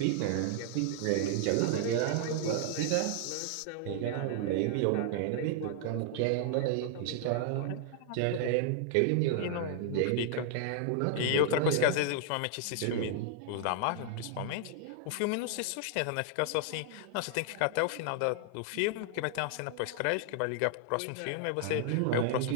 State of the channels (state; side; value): different; both; correlation 0.00